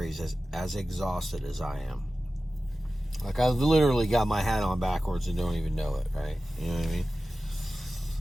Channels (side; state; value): both; normal; correlation 0.95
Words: as exhausted as I am. Like, I literally got my hat on backwards and don't even know it, right? You know what I mean?